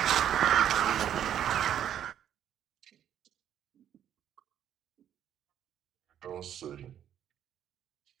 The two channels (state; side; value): quieter; left; 10.1 dB